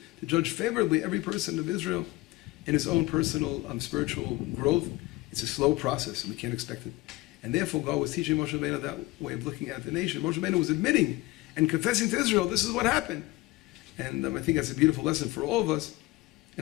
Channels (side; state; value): right; quieter; 20.2 dB